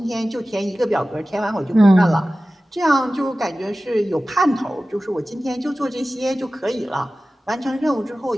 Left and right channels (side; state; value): both; normal; correlation 0.96